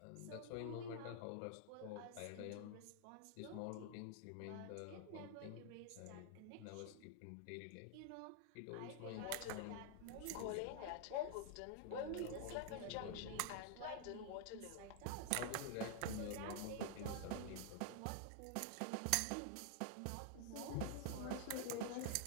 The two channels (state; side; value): different; both; correlation 0.00